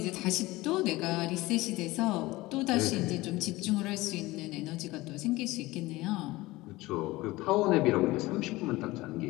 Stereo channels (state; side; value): quieter; right; 19.7 dB